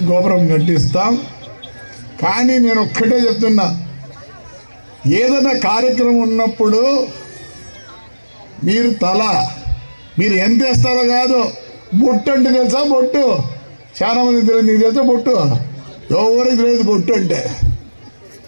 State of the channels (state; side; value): inverted; both; correlation -1.00